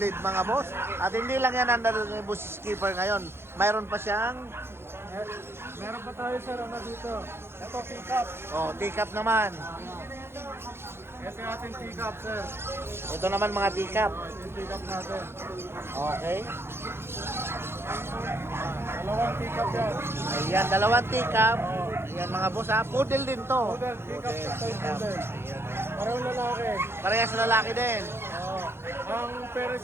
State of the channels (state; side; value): late; left; 0.12 ms